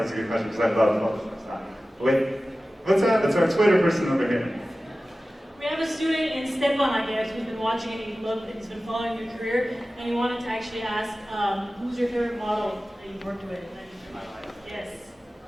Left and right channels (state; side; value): normal; both; correlation 0.96